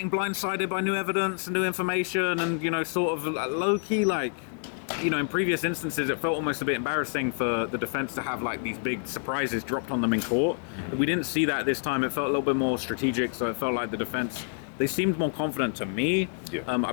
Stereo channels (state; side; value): silent; right; 60 dB below the other